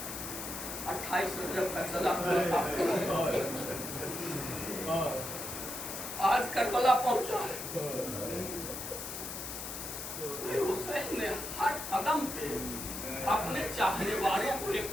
28 رجب کا چلا آج کربلا پہنچا ہے۔ حسین نے ہر قدم پہ اپنے چاہنے والوں کو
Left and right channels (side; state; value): left; noise; hiss, 7 dB below the sound